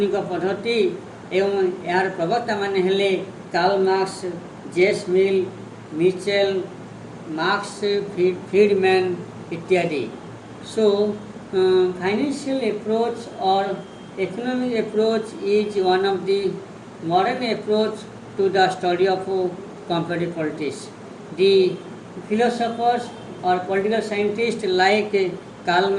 पद्धति एवं यार प्रवक्ता माने हेले Karl Marx, James Mill, Mitchell, Marx, Friedman इत्यादि. सो फाइनेंशियल अप्रोच और economic approach is one of the modern approach to the study of comparative politics. The philosophers or political scientists like Karl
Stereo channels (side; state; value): both; identical; correlation 1.00